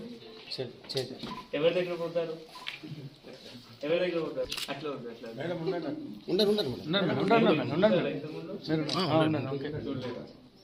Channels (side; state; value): both; identical; correlation 1.00